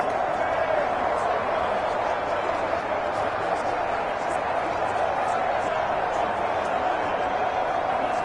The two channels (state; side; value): noise; right; rumble, 25 dB below the sound